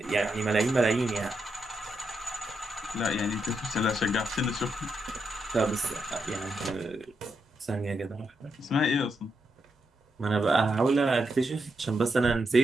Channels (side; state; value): both; normal; correlation 0.83